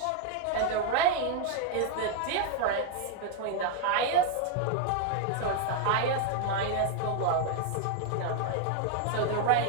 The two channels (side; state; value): both; different; correlation 0.00